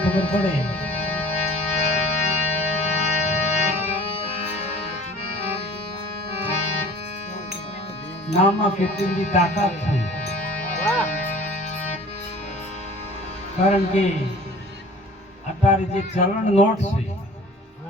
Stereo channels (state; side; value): normal; both; correlation 0.46